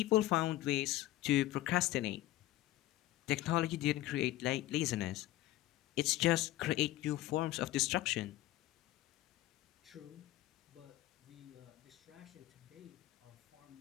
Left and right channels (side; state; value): right; quieter; 15.8 dB